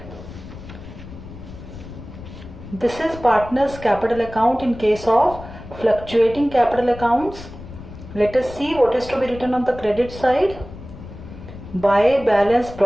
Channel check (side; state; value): left; noise; rumble, 14 dB below the sound